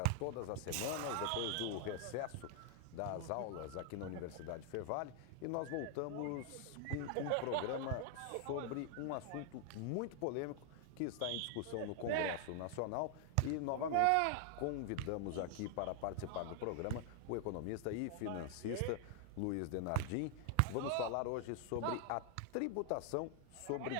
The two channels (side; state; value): both; different; correlation 0.00